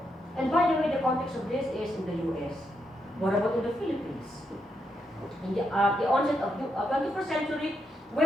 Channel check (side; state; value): both; normal; correlation 0.81